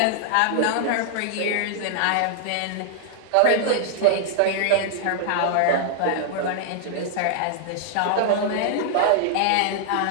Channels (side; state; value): both; different; correlation -0.01